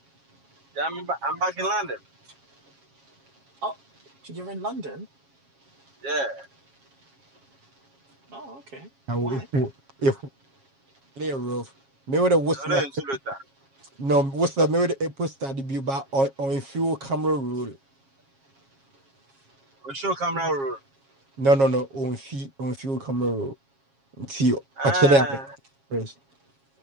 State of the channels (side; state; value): left; late; 7.3 ms